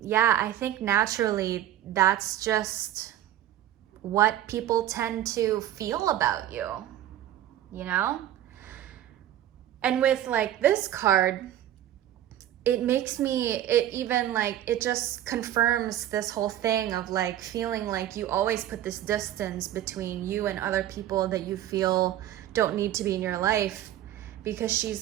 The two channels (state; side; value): quieter; left; 12.4 dB